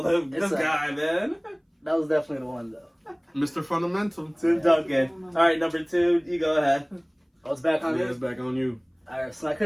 a- guy, man. That was definitely the one though. Mr. Fundamental. Tim Duncan. All right, number 2, you go ahead. I was back on Yeah, this. it's back on you. Alright, so I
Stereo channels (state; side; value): identical; both; correlation 1.00